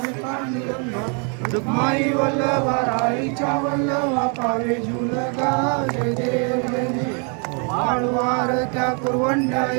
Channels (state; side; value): quieter; left; 37.8 dB